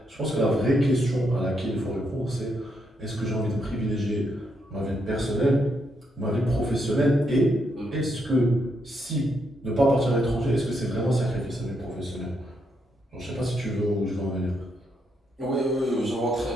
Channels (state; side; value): normal; both; correlation 0.78